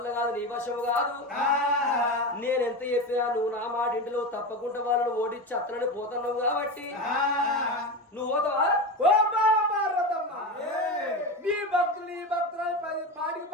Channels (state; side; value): normal; both; correlation 0.21